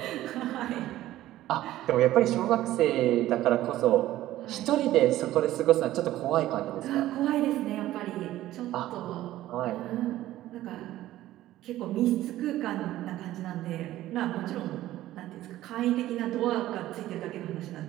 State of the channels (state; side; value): quieter; left; 14.7 dB